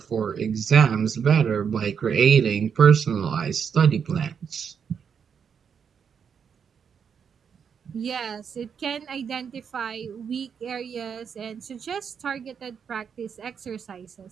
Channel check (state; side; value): quieter; left; 7.0 dB